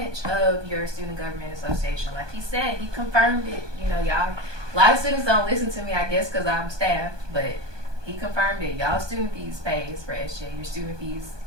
of your Student Government Association. Like he said, he confirmed it. You know, y'all, a lot of students don't listen to me, I guess, because I'm staff, but he confirmed it. Y'all student fees pays for SGA. Your student fees,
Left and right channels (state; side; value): late; left; 1.2 ms